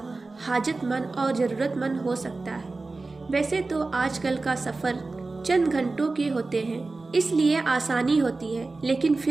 حاجت مند اور ضرورت مند ہو سکتا ہے۔ ویسے تو آج کل کا سفر چند گھنٹوں کے ہوتے ہیں، اس لیے آسانی ہوتی ہے، لیکن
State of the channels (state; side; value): quieter; left; 3.5 dB